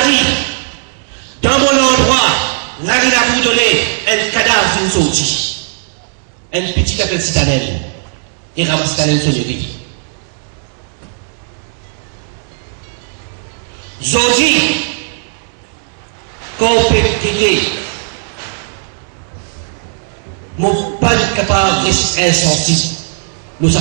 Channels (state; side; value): silent; left; digital silence